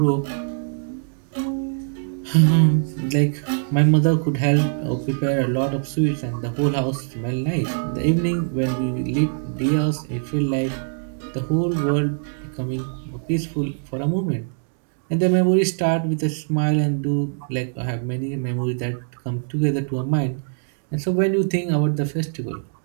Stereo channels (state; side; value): silent; left; 63 dB below the other